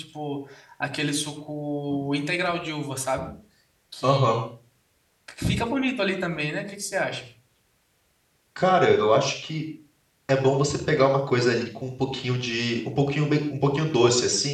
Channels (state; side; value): identical; both; correlation 1.00